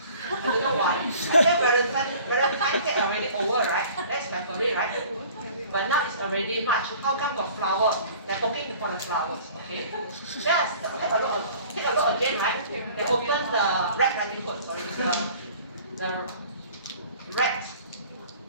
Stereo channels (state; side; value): inverted; both; correlation -0.48